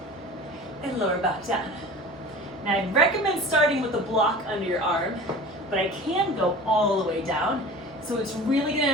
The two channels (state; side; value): normal; both; correlation 0.39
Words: and lower back down. Now I recommend starting with a block under your arm, but I can go all the way down. So it's really